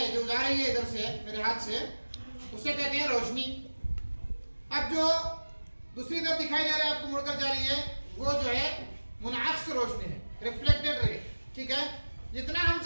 जो जा रही है इधर से मेरे हाथ से, उसे कहते हैं रोशनी। अब जो दूसरी तरफ दिखाई दे रहा है आपको मुड़कर जा रही है वो जो है मुनाक्स रोशनी है, रिफ्लेक्टेड रे। ठीक है, जितना हम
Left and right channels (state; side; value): inverted; both; correlation -1.00